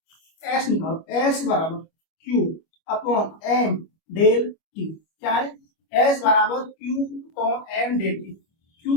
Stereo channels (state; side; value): late; right; 25 ms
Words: एस निकालो, एस बराबर Q upon M del T. क्या है, एस बराबर Q upon M del T. Q